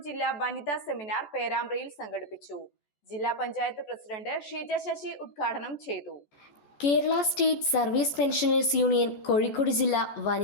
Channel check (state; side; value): late; right; 14 ms